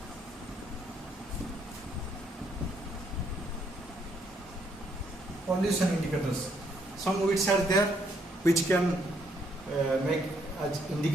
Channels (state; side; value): normal; both; correlation 0.71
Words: Some weeds are there which can make as